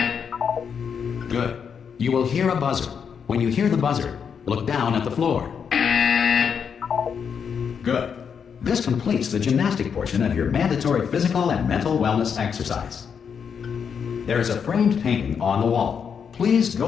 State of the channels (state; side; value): quieter; right; 6.9 dB